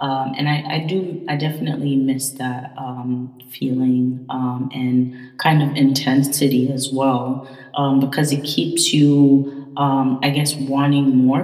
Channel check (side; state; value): both; identical; correlation 1.00